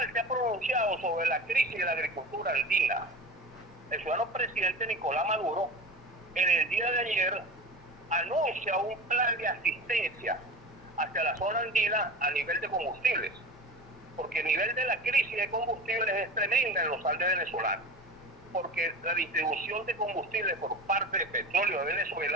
se ha pronunciado sobre la crisis de la agricultura andina. El ciudadano presidente Nicolás Maduro, en el día de ayer, anuncia un plan de asistencia hacia la zona andina a nivel de combustibles, porque el nivel de la crisis de combustibles es tremenda en los Andes venezolanos, porque la distribución de combustibles por parte de Petróleo de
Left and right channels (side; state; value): both; normal; correlation 0.32